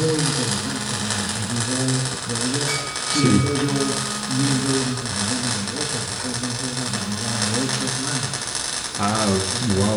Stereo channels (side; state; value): right; noise; hum, 26 dB below the sound